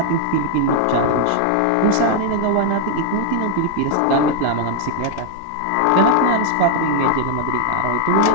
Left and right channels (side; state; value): both; different; correlation 0.00